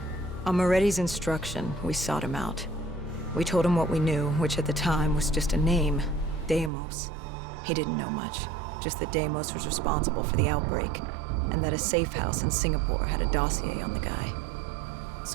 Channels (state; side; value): drops out; left; at 6.7 s